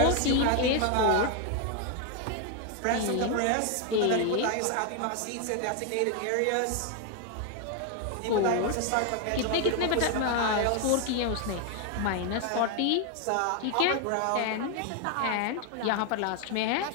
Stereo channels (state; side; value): different; both; correlation 0.01